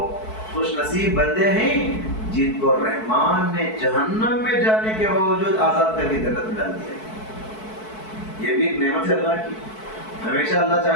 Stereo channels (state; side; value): late; right; 4.6 ms